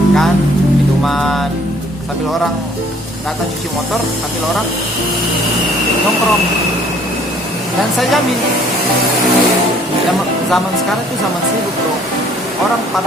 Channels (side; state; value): both; normal; correlation 0.59